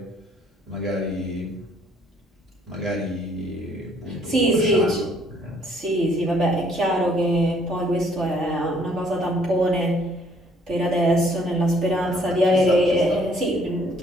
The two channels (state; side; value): normal; both; correlation 0.63